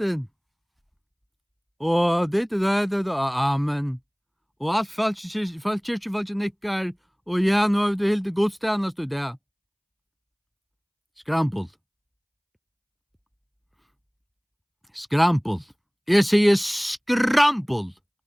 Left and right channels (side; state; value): both; identical; correlation 1.00